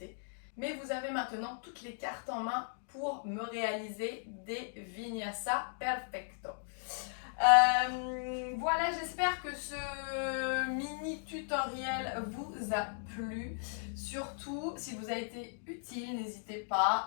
Mais vous avez maintenant toutes les cartes en main pour me réaliser des Vinyasa Perfecto. Voilà, j'espère que ce mini tutoriel vous a plu. Surtout, si vous a été utile, n'hésitez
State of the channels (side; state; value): right; silent; digital silence